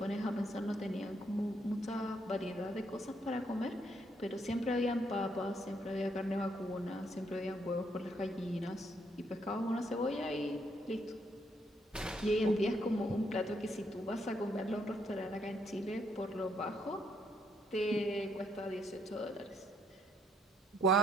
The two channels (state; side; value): normal; both; correlation 0.72